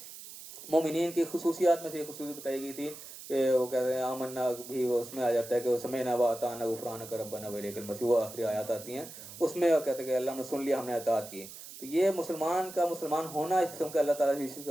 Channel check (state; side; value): noise; right; hiss, 14 dB below the sound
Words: मोमिनीन की खुसूसियात में से एक खुसूसी बताई गई थी कि वो कहते हैं आमन्ना भी, वो उसमें आ जाता है कि वो समयना व अताना गुफरानक रब्बना व इलैकल मसीह, वो आखिरी आयत आती हैं, उसमें कहते हैं कि अल्लाह ने सुन लिया, हमने अतात की। तो ये मुसलमान का मुसलमान होना इस किस्म का अल्लाह ताला से इस चीज़